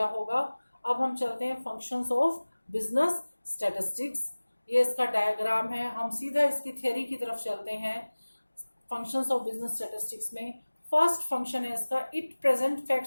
होगा. अब हम चलते हैं फंक्शंस ऑफ बिजनेस स्टैटिस्टिक्स. ये इसका डायग्राम है. हम सीधा इसकी थ्योरी की तरफ चलते हैं. फंक्शंस ऑफ बिजनेस स्टैटिस्टिक्स में फर्स्ट फंक्शन है इसका it present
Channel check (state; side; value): inverted; both; correlation -1.00